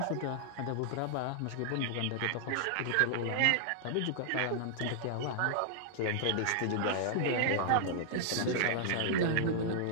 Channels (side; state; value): both; different; correlation -0.01